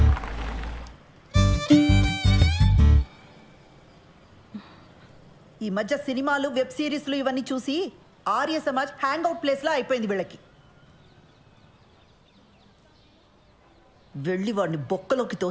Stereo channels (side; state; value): both; identical; correlation 1.00